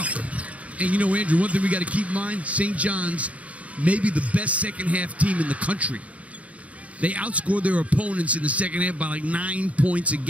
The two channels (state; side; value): late; left; 0.066 ms